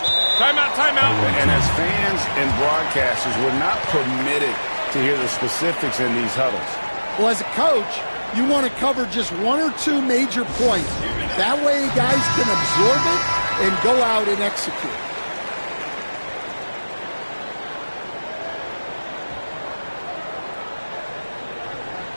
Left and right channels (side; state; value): both; inverted; correlation -1.00